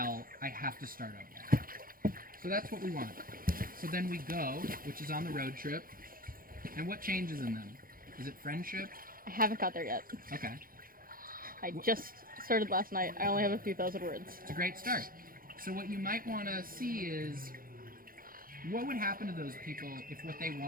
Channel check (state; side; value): late; left; 0.41 ms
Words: I have to start over. So that's what we want. So then we go, which is on the road trip. And what changes in them? Is it friendship? I haven't got there yet. Okay. I just started last night. I only have a few thousand words. It's a great start. So what you might want to see is, what would happen to those people if what they